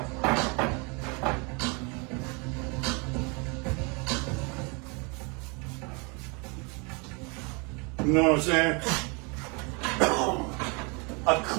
You know what I'm saying? A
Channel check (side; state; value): left; quieter; 31.3 dB